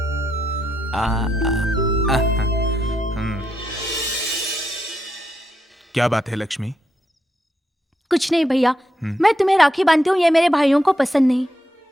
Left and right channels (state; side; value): normal; both; correlation 0.81